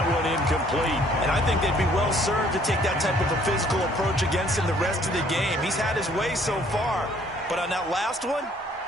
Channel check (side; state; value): both; normal; correlation 0.61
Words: one incomplete. And I think they'd be well served to take that type of a physical approach against him the rest of the game. He's had his way so far, but on that last one,